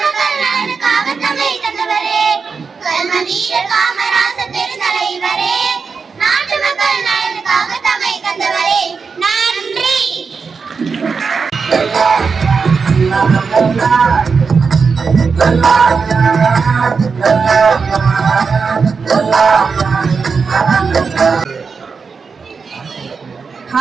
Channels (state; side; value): quieter; left; 5.2 dB